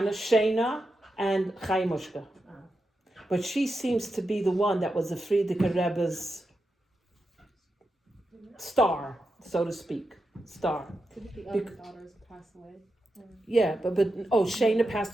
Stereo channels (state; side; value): normal; both; correlation 0.88